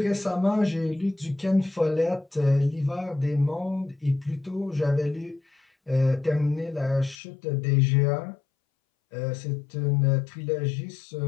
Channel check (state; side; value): drops out; right; at 7.2 s